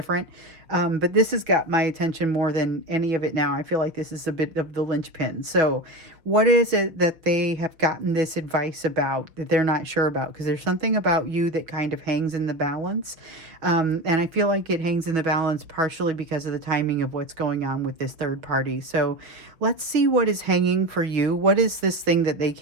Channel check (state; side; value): late; left; 5.7 ms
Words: but this has got my attention more than any of it now. I feel like this is a bit of the linchpin. So, what is it that they have gotten this advice about that they're not sure about? Because there's something about you that kind of hangs in the balance, and I feel like it hangs in the balance partially because of the timing of what's going on with this third party. So, let's see what is hanging for you. What is this thing that they